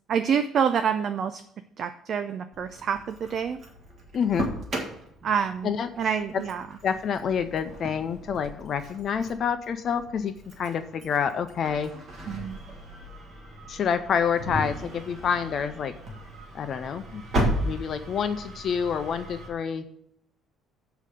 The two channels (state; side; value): normal; both; correlation 0.63